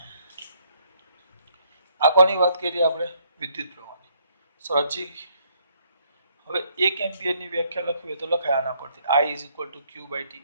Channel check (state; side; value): inverted; both; correlation -0.69